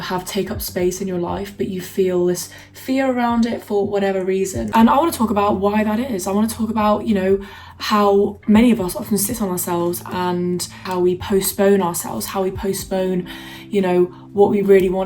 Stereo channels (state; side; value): identical; both; correlation 1.00